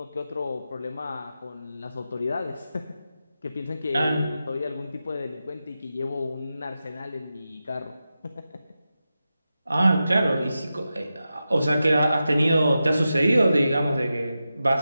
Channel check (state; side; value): inverted; both; correlation -0.91